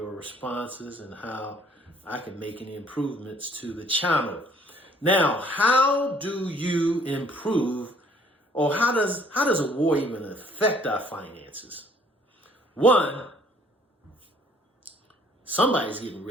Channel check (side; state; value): both; normal; correlation 0.59